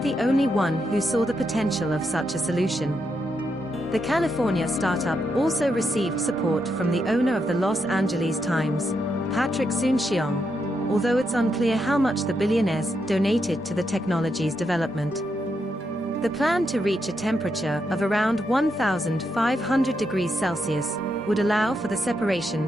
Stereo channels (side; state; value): both; normal; correlation 0.82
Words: the only one who saw the potential of such a solution. The California startup also received support from the owner of the Los Angeles Times, Patrick Soon-Shiong, although it's unclear how much the billionaires donated to the technology's development. The plan to reach a temperature of around 1500 degrees Celsius would allow for the